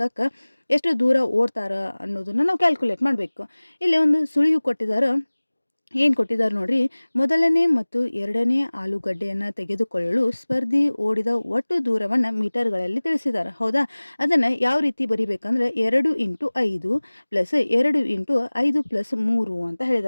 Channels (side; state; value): both; inverted; correlation -1.00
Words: ಎಷ್ಟು ದೂರ ಓಡ್ತಾರ ಅನ್ನೋದನ್ನು ನಾವು ಕ್ಯಾಲ್ಕುಲೇಟ್ ಮಾಡಬೇಕು. ಇಲ್ಲಿ ಒಂದು ಸುಳಿವು ಕೊಟ್ಟಿದ್ದಾರೆ. ಏನು ಕೊಟ್ಟಿದ್ದಾರೆ ನೋಡ್ರಿ, ಮೊದಲನೇ ಮತ್ತು ಎರಡನೇ ಆಲೂಗಡ್ಡೆಯನ್ನು ತೆಗೆದುಕೊಳ್ಳಲು ಸ್ಪರ್ಧಿ ಓಡಿದ ಒಟ್ಟು ದೂರವನ್ನು ಮೀಟರ್ಗಳಲ್ಲಿ ತಿಳಿಸಿದ್ದಾರೆ. ಹೌದಾ, ಅದನ್ನು ಯಾವ ರೀತಿ ಬರಿಬೇಕಂದ್ರೆ 2 × 5 + 2 × 5 + 3 ಅಂತ